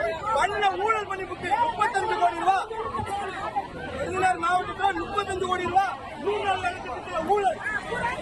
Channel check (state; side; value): identical; both; correlation 1.00